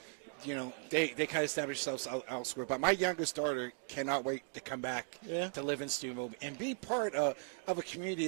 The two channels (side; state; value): left; silent; 53 dB below the other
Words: They kind of establish themselves elsewhere. But my youngest daughter cannot wait to come back to live in Steubenville and be part of a